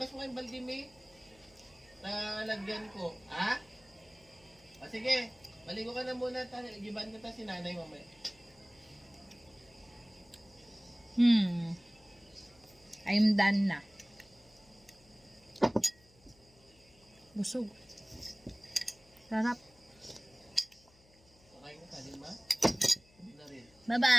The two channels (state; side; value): noise; left; hum, 28 dB below the sound